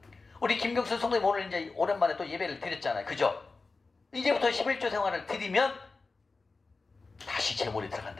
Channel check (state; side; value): quieter; right; 3.9 dB